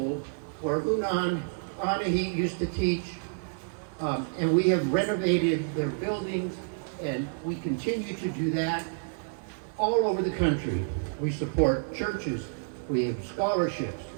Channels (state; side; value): silent; left; 58 dB below the other